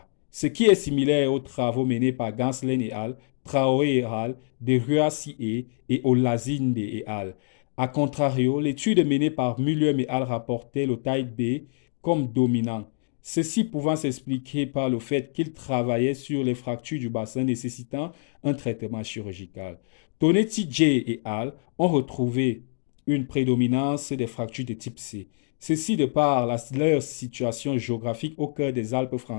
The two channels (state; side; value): silent; right; digital silence